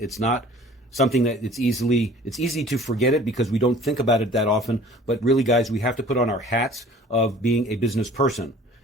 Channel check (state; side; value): normal; both; correlation 0.49